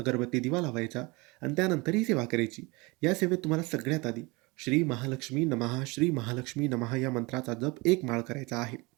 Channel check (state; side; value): quieter; left; 25.4 dB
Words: दिवा लावायचा आणि त्यानंतर ही सेवा करायची. या सेवेत तुम्हाला सगळ्यात आधी श्री महालक्ष्मी नमः, श्री महालक्ष्मी नमः या मंत्राचा जप 1 माळ करायचा आहे.